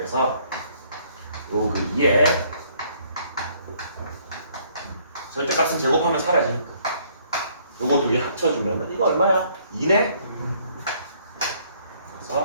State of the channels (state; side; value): inverted; both; correlation -0.64